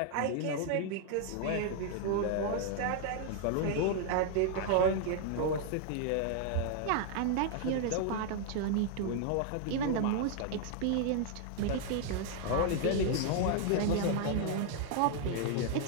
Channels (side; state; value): both; different; correlation 0.00